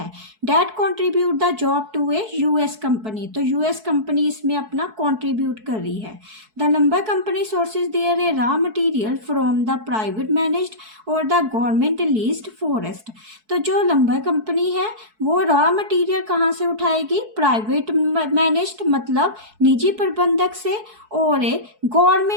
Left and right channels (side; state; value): left; late; 4.6 ms